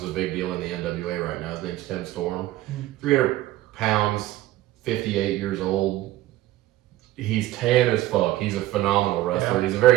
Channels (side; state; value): left; quieter; 15.6 dB